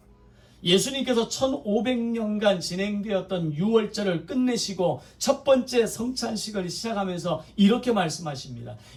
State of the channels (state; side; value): identical; both; correlation 1.00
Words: 예수님께서 1500년간 진행되었던 유월절을 끝내시고 첫 번째 성찬식을 시작하면서 이렇게 말씀하십니다.